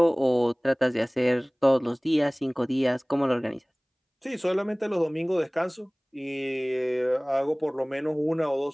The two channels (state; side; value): identical; both; correlation 1.00